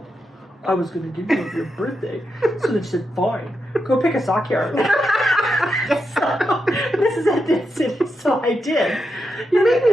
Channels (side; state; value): both; normal; correlation 0.85